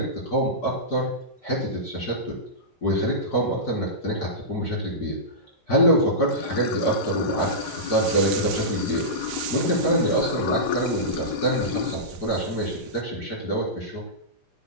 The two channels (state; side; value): normal; both; correlation -0.16